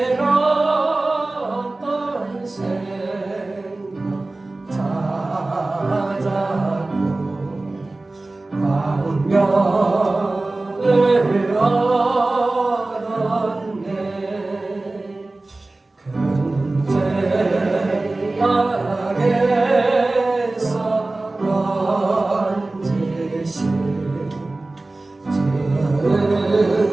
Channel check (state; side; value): quieter; left; 3.0 dB